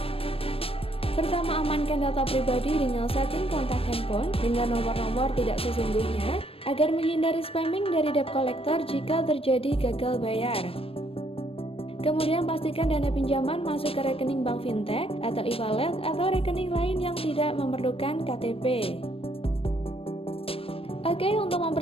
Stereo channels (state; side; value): late; right; 0.28 ms